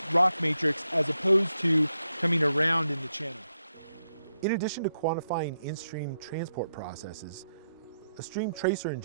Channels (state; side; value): inverted; both; correlation -0.82